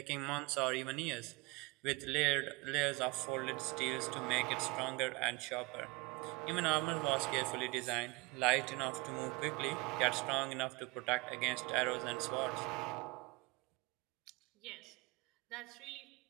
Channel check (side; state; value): left; quieter; 24.8 dB